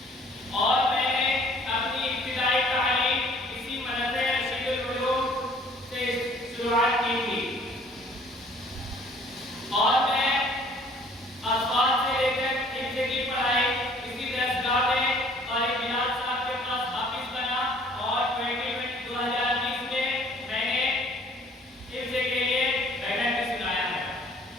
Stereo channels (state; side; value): normal; both; correlation 0.56